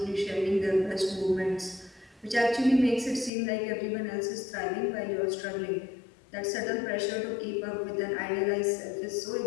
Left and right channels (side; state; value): right; drops out; at 3.3 s